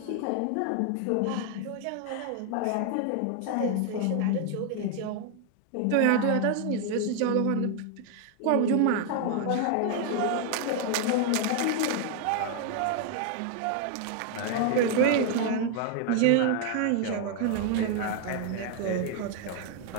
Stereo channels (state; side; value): different; both; correlation 0.00